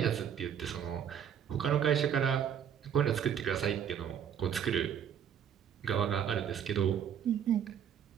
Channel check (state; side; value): quieter; left; 8.7 dB